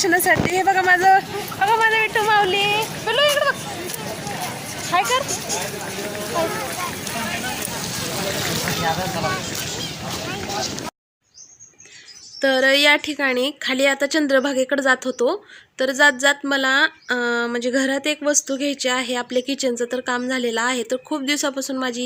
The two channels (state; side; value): identical; both; correlation 1.00